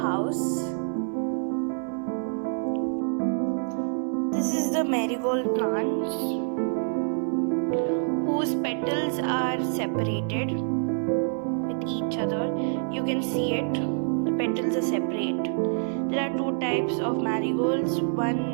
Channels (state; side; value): silent; left; digital silence